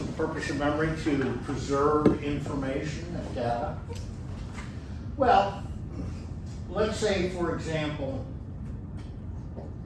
the purpose of memory to preserve information and data? Well, let's say, for example,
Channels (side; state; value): both; identical; correlation 1.00